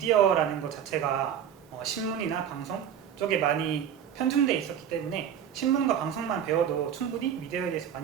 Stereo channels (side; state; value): left; quieter; 9.0 dB